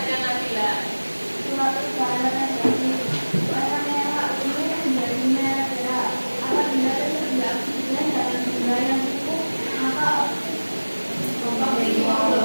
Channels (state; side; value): inverted; both; correlation -1.00